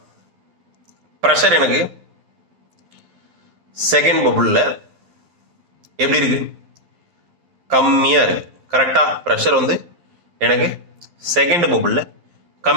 பிரஷர் எனக்கு செகண்ட் பபுள்ல எப்படி இருக்கு? கம்மியா இருக்கு. கரெக்டா? பிரஷர் வந்து எனக்கு செகண்ட் பபுள்ல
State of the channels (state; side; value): late; left; 11 ms